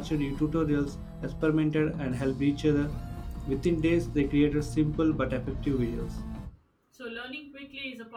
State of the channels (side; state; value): both; identical; correlation 1.00